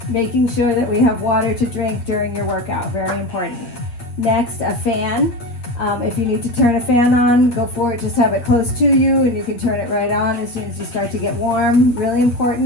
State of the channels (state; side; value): late; right; 8.5 ms